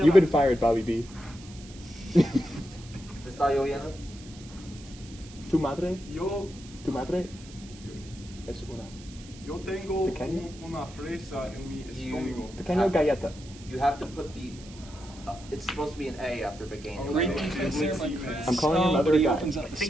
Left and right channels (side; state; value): right; noise; hiss, 20 dB below the sound